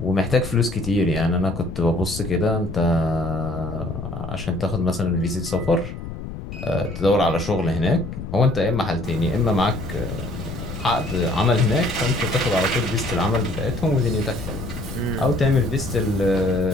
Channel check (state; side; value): noise; left; rumble, 9 dB below the sound